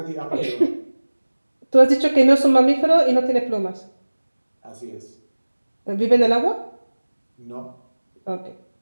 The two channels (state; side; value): inverted; both; correlation -1.00